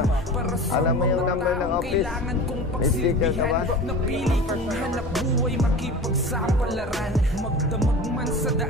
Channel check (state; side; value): normal; both; correlation 0.35